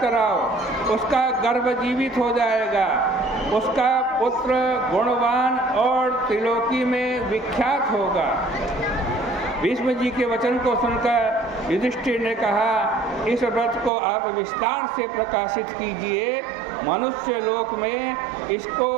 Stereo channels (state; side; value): drops out; left; at 13.9 s